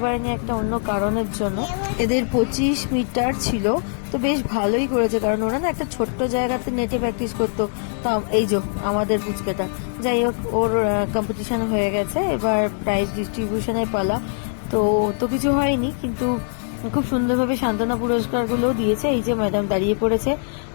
পারিনি একটা অন্য কারণের জন্য। এদের 25 মিটার ছিল, তো বেশ ভালোই করেছে, কারণ ওরা না একটা ছোট্ট জায়গাতে নেটে প্র্যাকটিস করতো। তো এই যে আমাদের পুচকেটা, যাই হোক, ওর কম্পিটিশন হয়ে গেছে, এবার প্রাইজ ডিস্ট্রিবিউশনের পালা। তো তো কিছু হয়নি, কিন্তু খুব সুন্দরভাবে সান্ত্বনা পুরস্কারগুলো দিয়েছে। এই যে ম্যাডাম দাঁড়িয়ে পড়েছে,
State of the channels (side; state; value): right; silent; digital silence